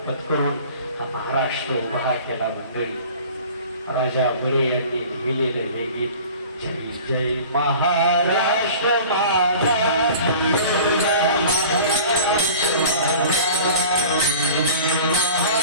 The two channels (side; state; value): both; inverted; correlation -0.42